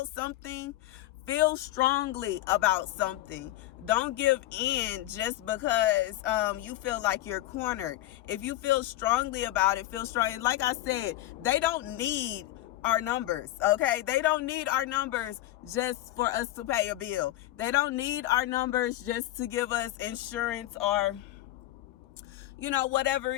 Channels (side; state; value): right; quieter; 15.1 dB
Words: something, feel strongly about something. Don't give in just because you feel like you're cornered. If you feel strongly about it, feel strong. And like I said, they don't need our numbers, okay? They don't need our numbers just for us to pay a bill. They don't need our numbers just to give us insurance or, you know, whatever